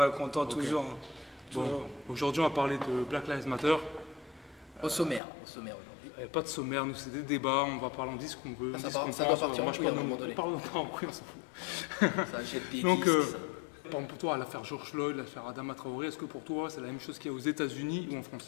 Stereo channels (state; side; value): drops out; right; at 5.2 s